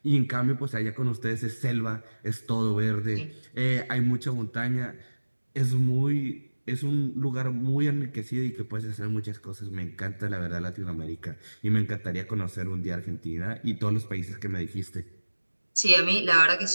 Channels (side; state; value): both; inverted; correlation -1.00